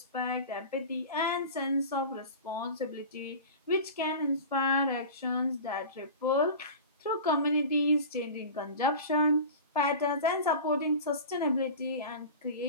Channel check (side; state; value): both; inverted; correlation -0.34